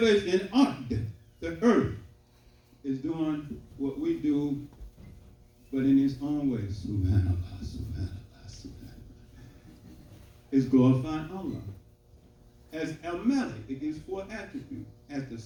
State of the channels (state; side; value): identical; both; correlation 1.00